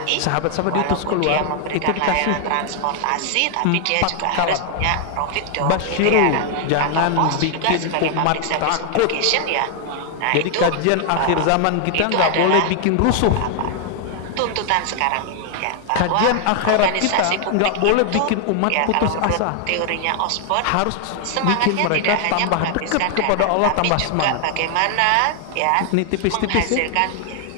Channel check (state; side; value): different; both; correlation 0.00